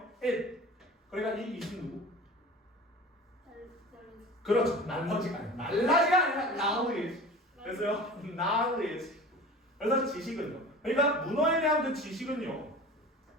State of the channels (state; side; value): normal; both; correlation 0.38